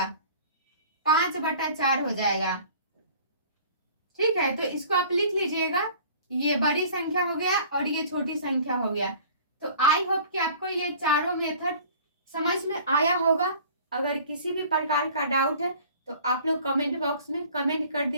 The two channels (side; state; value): both; inverted; correlation -0.48